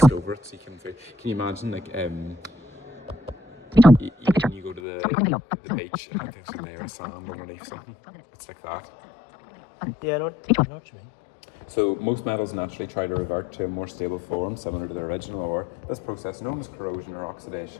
over it, so you can feel. Can you imagine like when you go to the beach and there's a layer of sand underneath something? It's like that. Yeah, I know what you mean. So most metals naturally try to revert to a more stable form similar to their original ore. This process, known as corrosion or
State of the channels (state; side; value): drops out; right; at 4.8 s